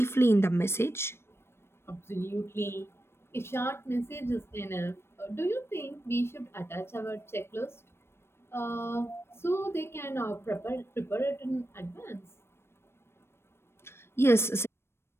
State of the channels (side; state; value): right; late; 0.12 ms